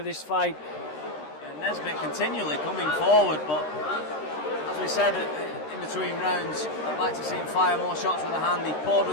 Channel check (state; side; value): late; right; 13 ms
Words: this fight. And Nesbit continually coming forward, but as we said in between rounds, I'd like to see him fire more shots with a hand. He poured